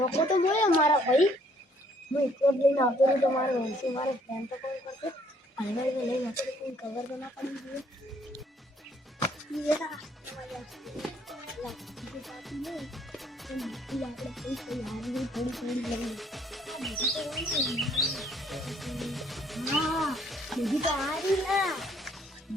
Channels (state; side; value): normal; both; correlation 0.64